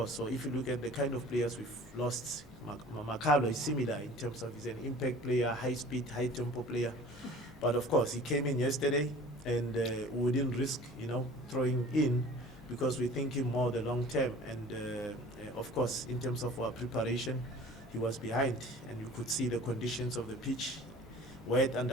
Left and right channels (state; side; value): normal; both; correlation 0.45